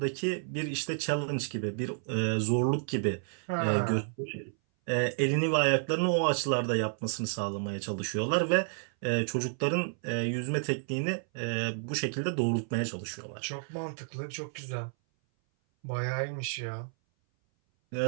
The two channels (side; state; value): left; silent; 57 dB below the other